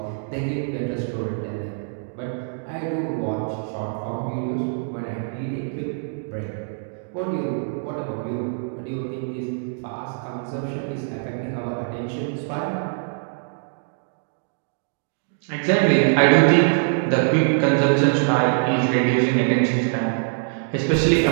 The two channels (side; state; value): left; silent; digital silence